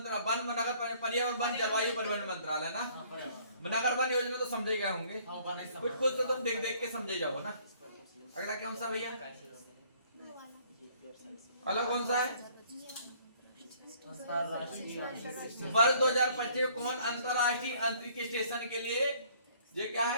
वन नगर पर्यावरण वन जलवायु परिवर्तन मंत्रालय ना। नगर वन योजना तो समझे गए होंगे, कुछ कुछ तो तुम देख देख के समझे जाओ ना। अगला कौन सा भैया? अगला कौन सा है? वर्ष 2025 कौन अंतरराष्ट्रीय अंतरिक्ष स्टेशन के लिए ये क्या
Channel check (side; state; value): both; inverted; correlation -0.59